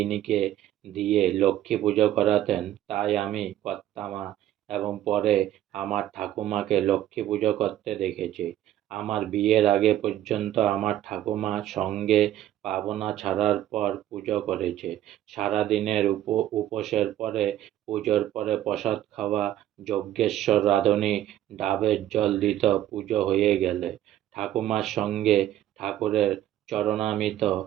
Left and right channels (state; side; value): quieter; left; 12.6 dB